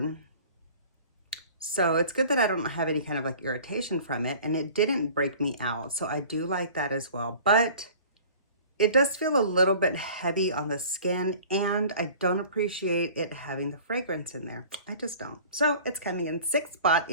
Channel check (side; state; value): both; inverted; correlation -0.46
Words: So it's good that I don't have any kind of like irritation from it, and it didn't break me out. So I do like that as well, but it does feel a little bit heavy on the skin, and I don't appreciate it having the fragrance in there. I just don't. So it's coming in 6th spot